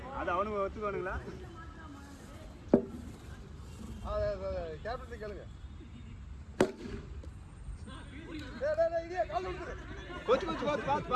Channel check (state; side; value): identical; both; correlation 1.00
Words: அது அவனுக்கு ஒத்துக்குவானுங்களா கேப்டன் கேளுங்க டேய் இதே கால் விட்டுரு கோச்